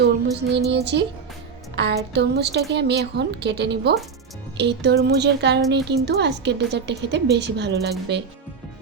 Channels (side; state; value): left; quieter; 5.6 dB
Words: নিয়ে নিয়েছি, আর তরমুজটাকে আমি এখন কেটে নিব। এই তরমুজের কারণেই কিন্তু আজকের ডেজার্টটা খেতে বেশি ভালো লাগবে।